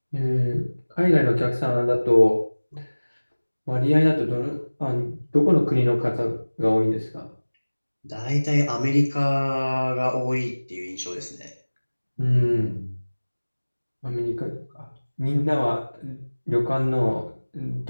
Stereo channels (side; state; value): both; inverted; correlation -1.00